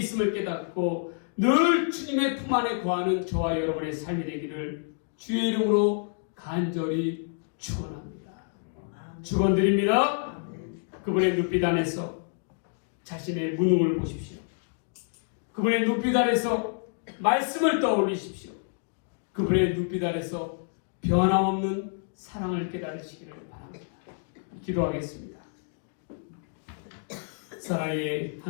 깨닫고 늘 주님의 품 안에 거하는 저와 여러분의 삶이 되기를 주의 이름으로 간절히 축원합니다. 축원드립니다. 그분의 눈빛 안에서 자신의 무능을 보십시오. 그분의 눈빛 안에서 말씀을 떠올리십시오. 그분의 눈빛 안에서 변함없는 사랑을 깨달으시기를 바랍니다. 기도하겠습니다. 사랑의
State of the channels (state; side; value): silent; right; digital silence